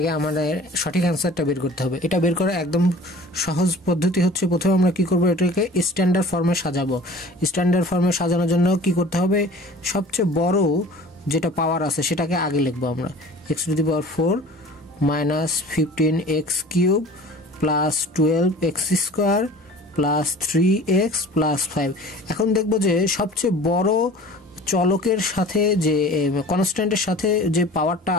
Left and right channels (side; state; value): both; normal; correlation 0.44